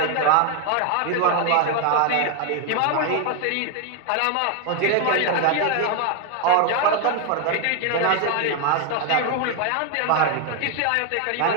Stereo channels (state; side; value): different; both; correlation 0.01